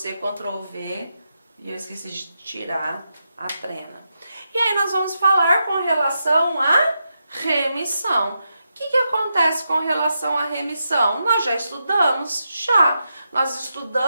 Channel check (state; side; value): inverted; both; correlation -0.86